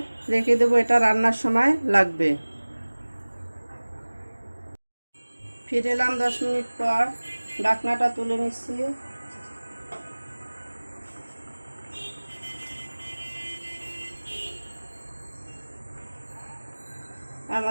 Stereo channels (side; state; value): both; inverted; correlation -1.00